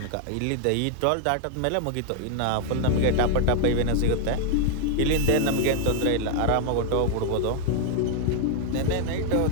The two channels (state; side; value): different; both; correlation 0.00